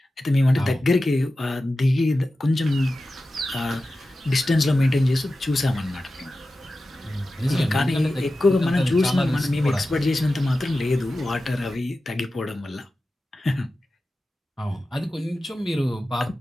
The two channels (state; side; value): normal; both; correlation 0.94